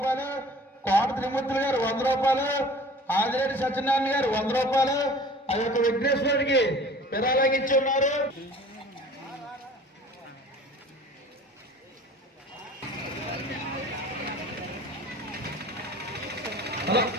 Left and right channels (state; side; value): normal; both; correlation 0.46